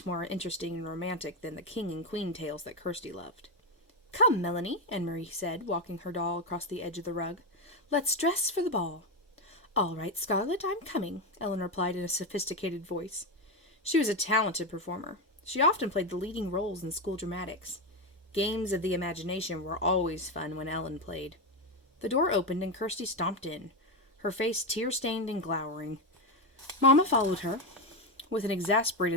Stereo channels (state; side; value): normal; both; correlation 0.10